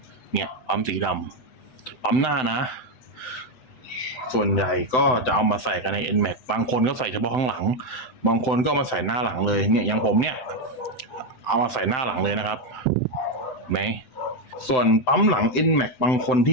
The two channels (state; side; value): late; right; 7.8 ms